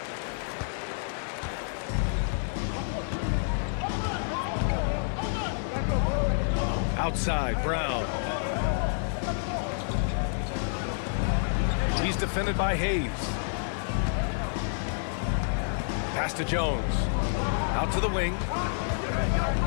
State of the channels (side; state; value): right; silent; digital silence